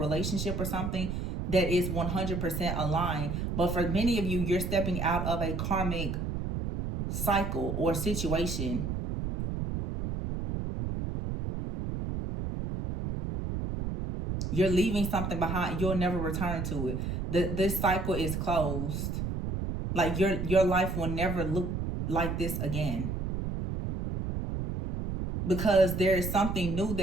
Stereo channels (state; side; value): noise; right; rumble, 3 dB below the sound